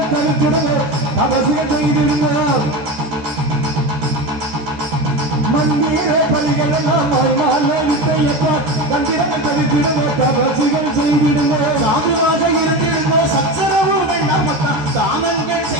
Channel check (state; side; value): late; left; 13 ms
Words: தடுக்கிறது அவசியம் செய்திருங்க மந்திர பலிகள் எல்லாம் வித்தையப்பா தந்திரங்கள் தடுக்கிறது அவசியம் செய்திருங்க சாதுவாக இருந்திருந்தோ சச்சரவு வேண்டாமக்கா தானங்கள்